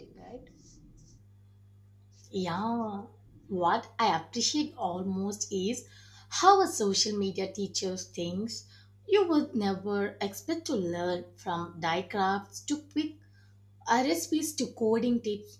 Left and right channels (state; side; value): identical; both; correlation 1.00